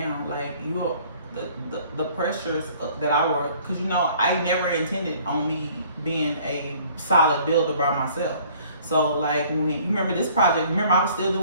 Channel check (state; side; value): inverted; both; correlation -0.55